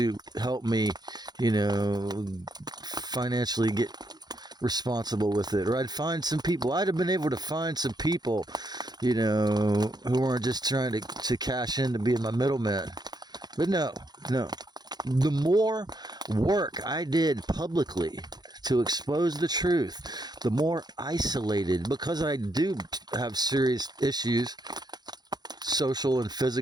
help me, financially get responsible with it. Or I'd have been able to find some people, who weren't just trying to cash in to being my middleman. But no. The more work I did publicly to expose the truth, the more isolated, because I do have serious issues, social and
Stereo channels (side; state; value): left; late; 0.20 ms